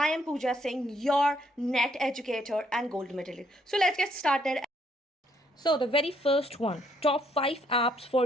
am Pooja Singh, your NET educator and gold medalist. So let's get started. So the very first one, top 5 apps for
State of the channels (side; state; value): both; normal; correlation 0.70